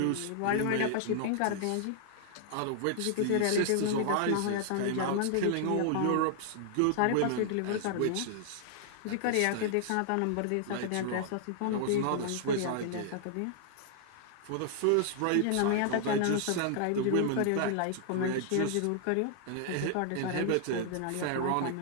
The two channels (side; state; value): both; different; correlation 0.00